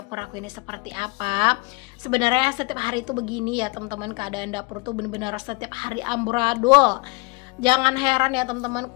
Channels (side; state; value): right; quieter; 28.2 dB